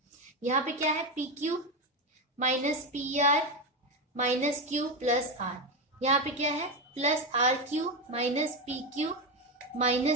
यहाँ पे क्या है, p q minus p r minus q plus r, यहाँ पे क्या है plus r q minus p q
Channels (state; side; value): normal; both; correlation 0.12